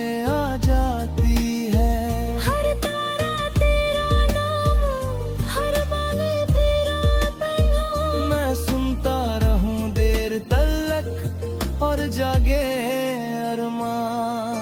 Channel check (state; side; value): identical; both; correlation 1.00